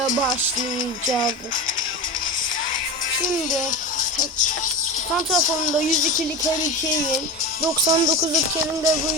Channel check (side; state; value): both; normal; correlation 0.25